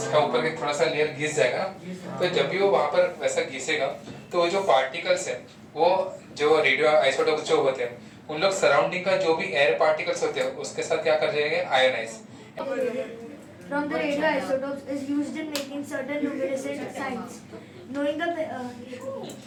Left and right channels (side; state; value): both; identical; correlation 1.00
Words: ऊपर के थोड़ा सा लेयर घिस जाएगा, तो जब भी वो वहाँ पर वैसा घिसेगा तो वो जो पार्टिकल्स है वो जो रेडियो आइसोटोप्स जो होते हैं उन लोग सराउंडिंग का जो भी एयर पार्टिकल्स होते हैं उसके साथ क्या कर जाएंगे, ionise. From the radioisotopes is used in making certain luminescent signs. Knowing the